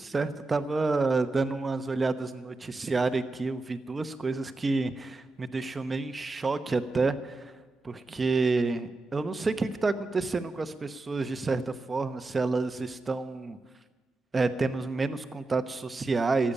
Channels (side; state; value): left; quieter; 3.2 dB